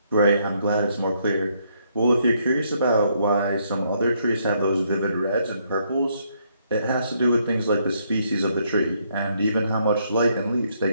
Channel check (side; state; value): both; inverted; correlation -0.72